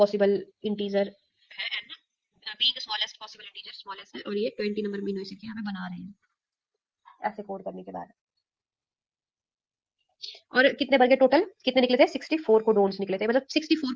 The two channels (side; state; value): both; identical; correlation 1.00